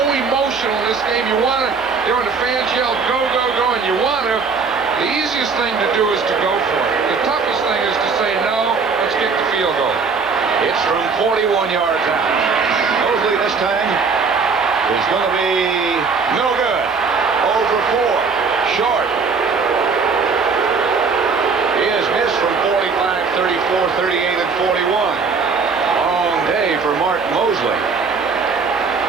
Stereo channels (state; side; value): quieter; left; 5.0 dB